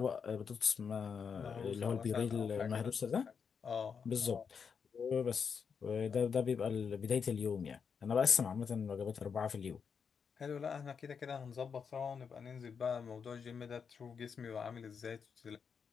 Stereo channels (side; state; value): right; quieter; 6.4 dB